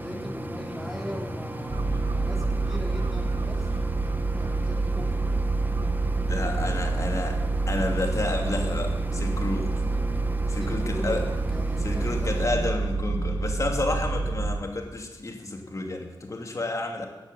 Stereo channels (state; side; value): normal; both; correlation 0.86